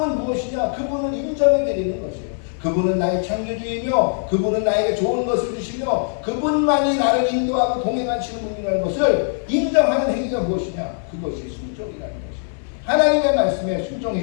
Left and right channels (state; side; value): silent; right; digital silence